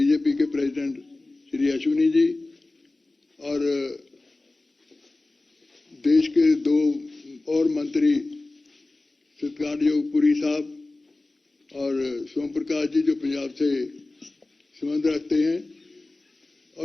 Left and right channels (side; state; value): right; quieter; 3.0 dB